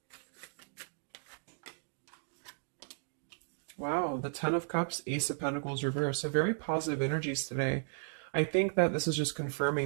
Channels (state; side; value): silent; left; digital silence